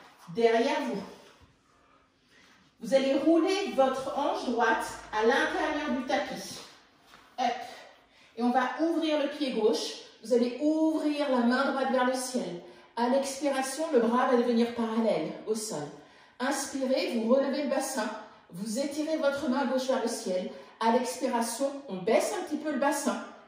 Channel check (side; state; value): both; identical; correlation 1.00